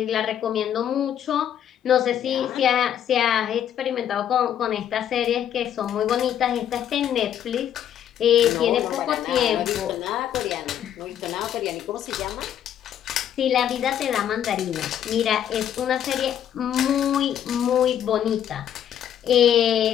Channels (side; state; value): right; quieter; 10.0 dB